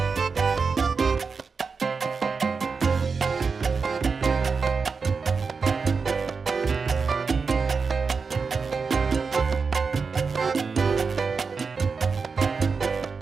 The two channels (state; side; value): quieter; left; 5.0 dB